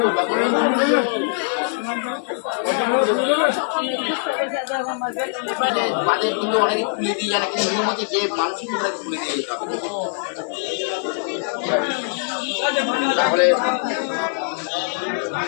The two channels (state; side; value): silent; right; digital silence